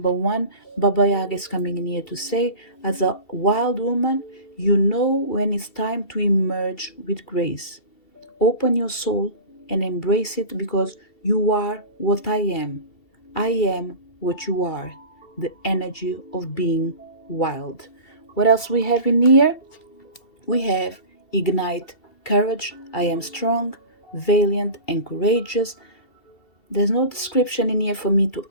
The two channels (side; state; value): right; late; 2.7 ms